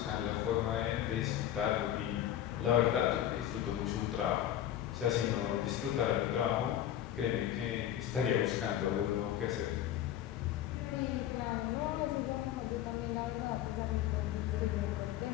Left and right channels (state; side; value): quieter; right; 11.6 dB